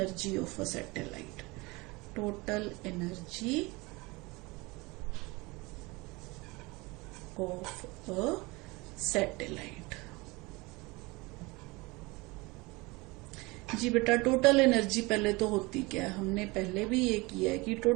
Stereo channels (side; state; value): left; quieter; 24.3 dB